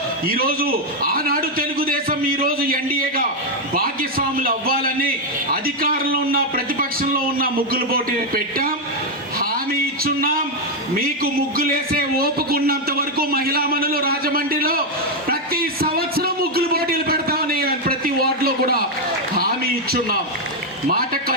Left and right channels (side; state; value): both; normal; correlation 0.03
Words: ఈరోజు ఆనాడు తెలుగుదేశం ఈరోజు ఎన్డీఏగా భాగ్యస్వాములు అవ్వాలని అధికారంలో ఉన్న ప్రతిపక్షంలో ఉన్న ముగ్గులు పోటీ పెట్టాం, హామీ ఇచ్చున్నాం. మీకు ముగ్గులేసే ఓపుకున్నంత వరకు మహిళా మనులు రాజమండ్రిలో ప్రతి సంవత్సరం ముగ్గులు పోటీలు పెడతామని ప్రతి వార్డులో కూడా హామీ ఇచ్చున్నాం. మాట